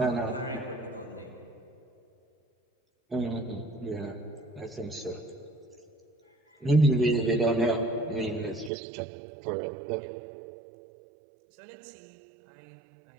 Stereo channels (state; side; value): drops out; left; at 8.7 s